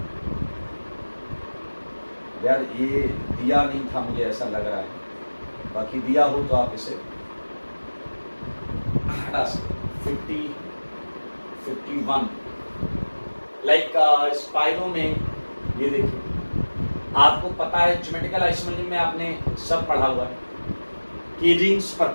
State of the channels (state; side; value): inverted; both; correlation -1.00